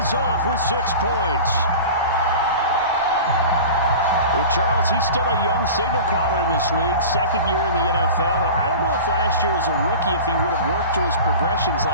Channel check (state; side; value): inverted; both; correlation -0.35